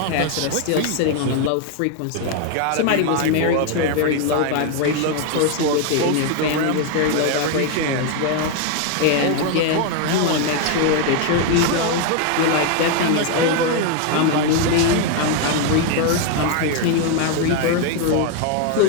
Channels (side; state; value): both; different; correlation 0.01